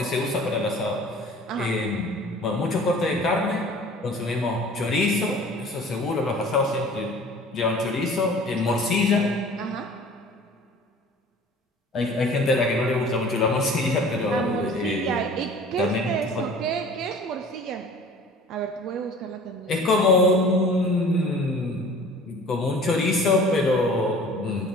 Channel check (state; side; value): normal; both; correlation 0.46